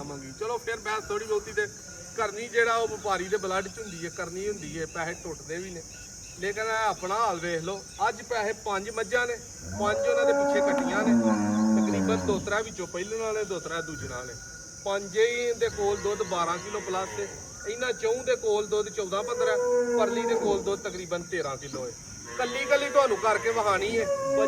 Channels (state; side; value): identical; both; correlation 1.00